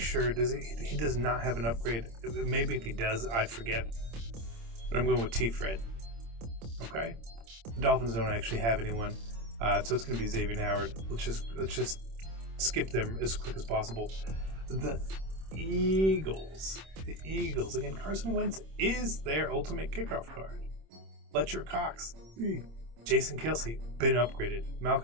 he does not have an upgrade. Maybe if he does, I forget. But I'm going with T-Fred. Okay? The Dolphins don't actually have anyone. So it's going to be Xavier Howard. Let's just skip them as quick as possible. The Eagles. The Eagles. Again, Carson Wentz is their ultimate kickoff card. Fletcher Cox, Jason Kelce, been upgraded.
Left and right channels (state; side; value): late; left; 26 ms